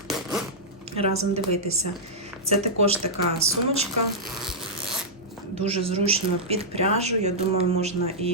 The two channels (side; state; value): both; normal; correlation -0.10